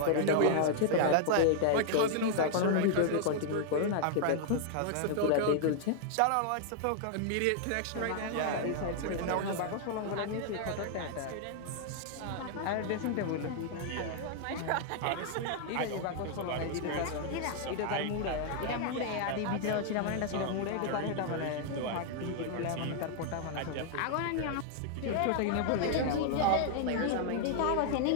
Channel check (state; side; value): different; both; correlation -0.01